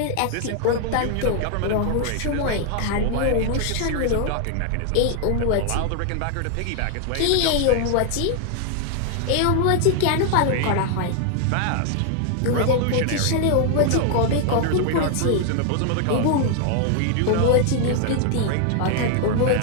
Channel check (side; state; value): both; different; correlation 0.00